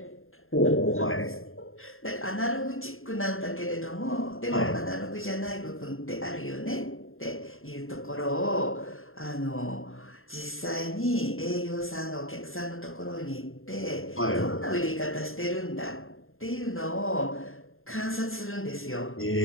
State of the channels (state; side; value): late; right; 0.61 ms